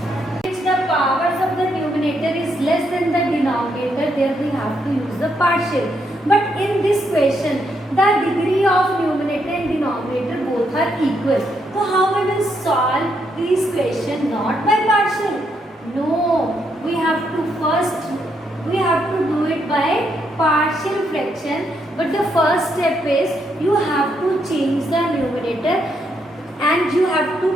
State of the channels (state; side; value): normal; both; correlation 0.77